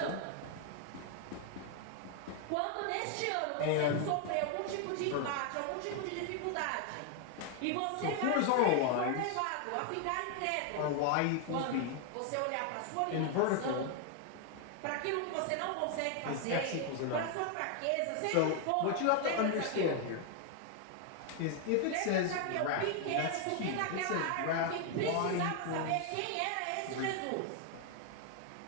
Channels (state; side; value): different; both; correlation 0.00